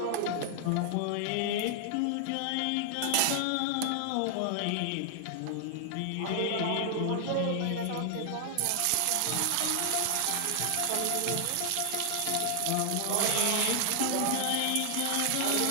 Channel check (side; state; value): both; different; correlation 0.00